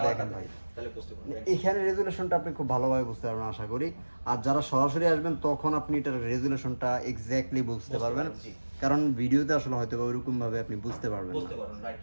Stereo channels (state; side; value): inverted; both; correlation -1.00